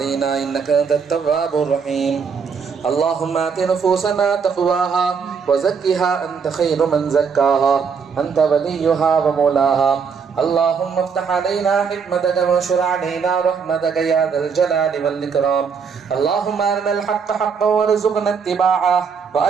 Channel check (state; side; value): quieter; left; 6.0 dB